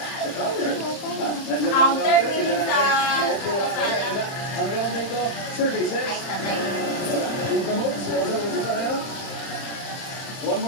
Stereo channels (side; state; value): right; late; 30 ms